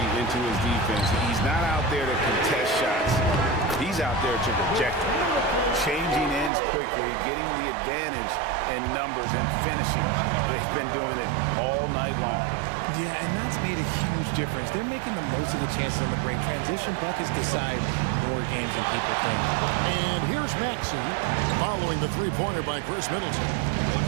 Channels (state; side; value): drops out; left; at 6.5 s